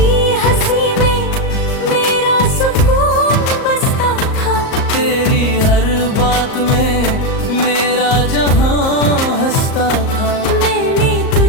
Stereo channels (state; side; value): late; right; 38 ms